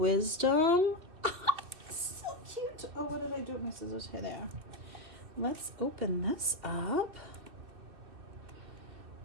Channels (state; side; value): late; left; 2.6 ms